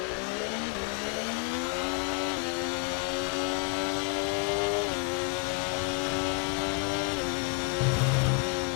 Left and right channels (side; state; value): right; quieter; 35.5 dB